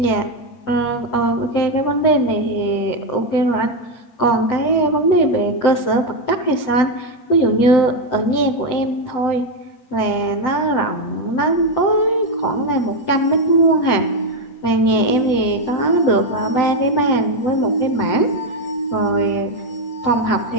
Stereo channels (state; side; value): late; right; 7.8 ms